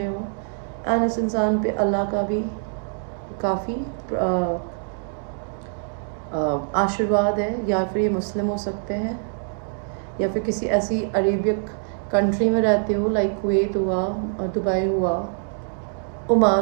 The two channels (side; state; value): left; silent; 63 dB below the other